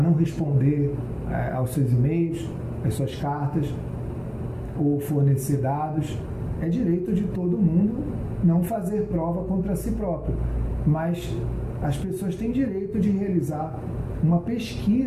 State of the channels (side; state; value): both; identical; correlation 1.00